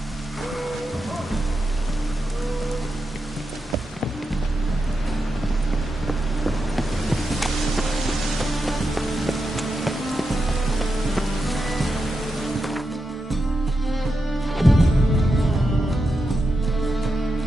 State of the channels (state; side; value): normal; both; correlation 0.87